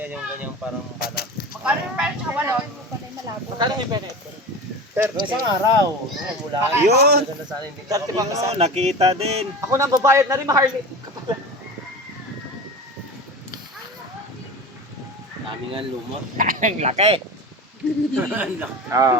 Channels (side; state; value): both; normal; correlation 0.30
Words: ganyang parang panak. Magkano yung pera sa balon? Magkano yung penet? Isang araw. Mula. Yun. Maganda sana hindi ka Ano, nakita din. Ako na babayad na rin, Harley. Dami nga lumot. Ang laki.